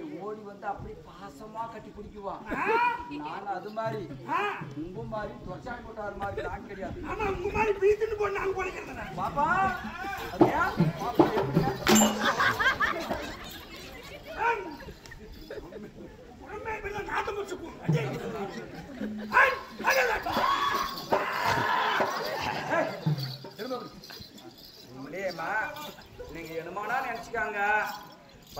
ஓடி அப்படி பாசமா கட்டி பிடிக்குவான். நான் அது மாதிரி உங்க மாதிரி தொச்சான் போட்டாரு மாதிரி நான் கிடையாது. ஆமா உங்க மாதிரி பீத்துன்னு போட்டு நாங்க போலிக்கிறேன் பாப்பா. அப்படியா பாப்பா உடம்பே நாட்டம் முடிச்சுக்குவோம். உண்மையிலேயேம்மா நீங்க என்னமானா நினைச்சுக்காங்க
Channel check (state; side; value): identical; both; correlation 1.00